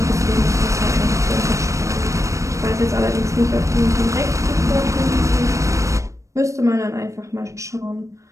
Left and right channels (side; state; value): left; late; 0.15 ms